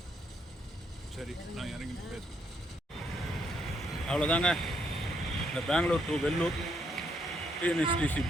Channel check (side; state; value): both; normal; correlation 0.74